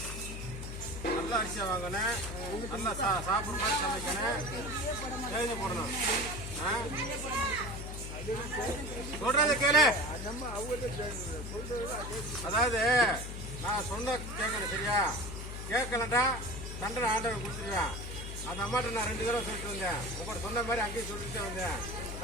நல்ல அரிசியா வாங்கணும், நல்லா சாப்பிட்ற மாதிரி சமைக்கணும், தேதி போடணும். சொல்றத கேளு. அதாவது நான் சொன்ன கேட்கணும் சரியா? கேட்கலட்டா தண்டனை ஆண்டவன் கொடுத்துருவேன். அந்த அம்மாட்ட நான் 2 தடவை சொல்லிட்டு வந்தேன். உங்கள்கிட்ட சொன்ன மாதிரி அங்கேயும் சொல்லிட்டு வந்தேன்.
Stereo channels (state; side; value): noise; left; hum, 7 dB below the sound